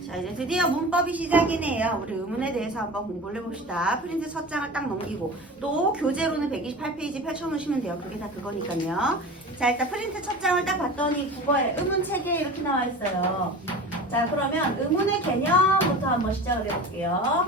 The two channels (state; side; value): normal; both; correlation 0.34